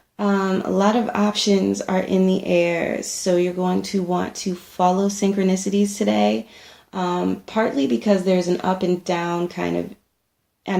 A lot of options are in the air, so you're going to want to follow synchronicities today. Partly because there's an up and down kind of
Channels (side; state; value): both; identical; correlation 1.00